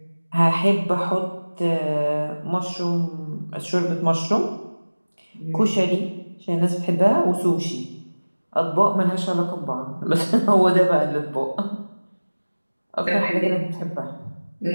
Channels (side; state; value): both; inverted; correlation -1.00